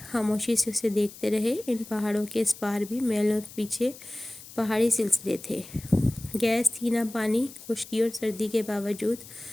خاموشی سے اسے دیکھتے رہے۔ ان پہاڑوں کے اس پار بھی میلوں پیچھے پہاڑی سلسلے تھے۔ گیس تھی نہ پانی، خشکی اور سردی کے باوجود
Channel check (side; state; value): left; noise; hiss, 17 dB below the sound